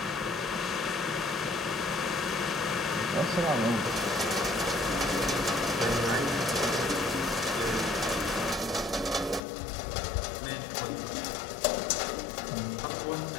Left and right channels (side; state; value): right; drops out; at 9.4 s